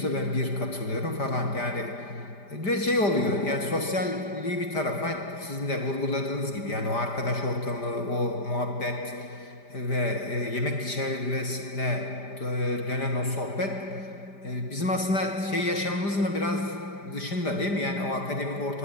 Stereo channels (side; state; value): right; late; 5.0 ms